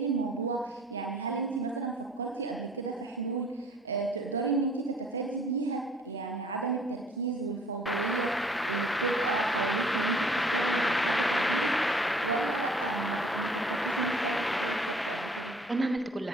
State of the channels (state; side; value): normal; both; correlation 0.55